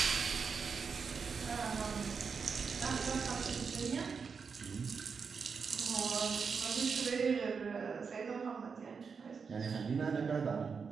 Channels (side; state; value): left; quieter; 5.6 dB